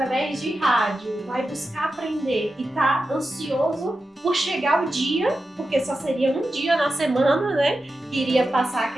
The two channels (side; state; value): both; normal; correlation 0.91